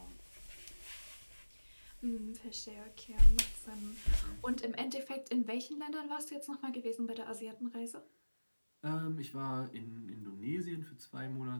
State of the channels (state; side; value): inverted; both; correlation -1.00